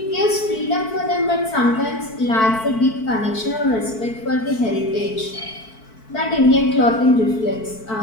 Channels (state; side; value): late; right; 4.5 ms